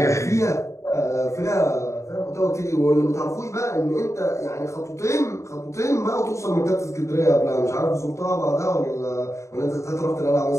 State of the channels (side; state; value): right; late; 0.14 ms